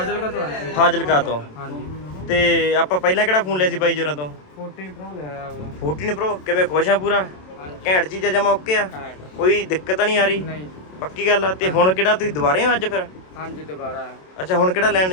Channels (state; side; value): late; right; 27 ms